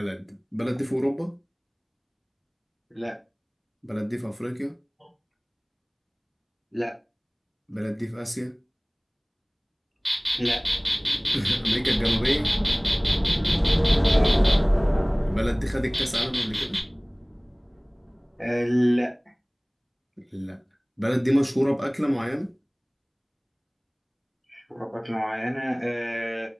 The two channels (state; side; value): identical; both; correlation 1.00